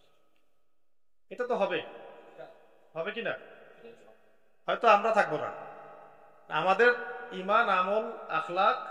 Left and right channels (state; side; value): identical; both; correlation 1.00